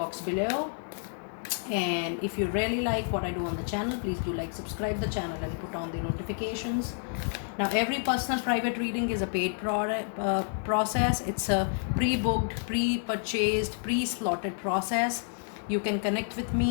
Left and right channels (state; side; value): silent; right; 58 dB below the other